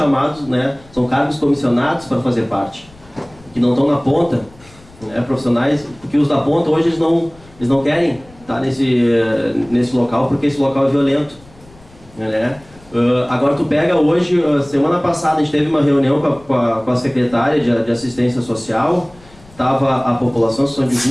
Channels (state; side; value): noise; left; rumble, 25 dB below the sound